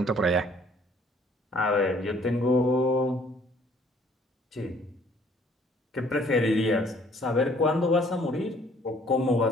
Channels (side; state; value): both; normal; correlation 0.60